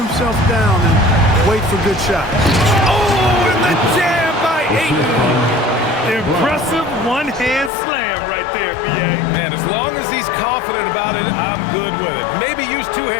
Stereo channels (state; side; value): drops out; right; at 7.7 s